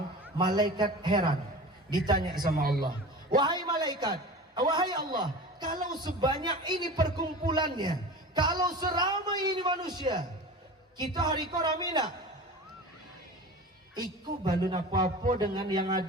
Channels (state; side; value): normal; both; correlation 0.34